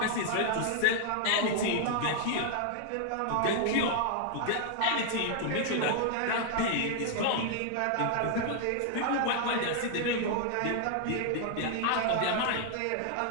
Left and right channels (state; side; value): different; both; correlation 0.00